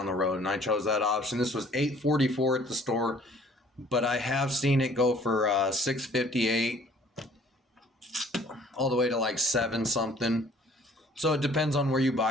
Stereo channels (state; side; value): normal; both; correlation 0.55